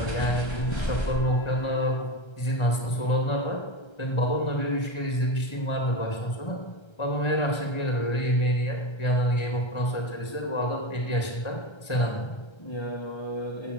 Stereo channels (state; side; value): late; right; 1.3 ms